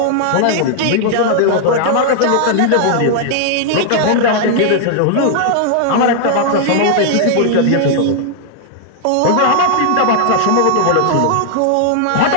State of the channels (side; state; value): both; different; correlation 0.00